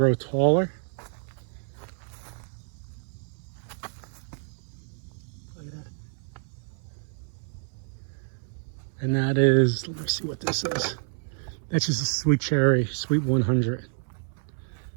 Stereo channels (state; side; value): silent; left; 58 dB below the other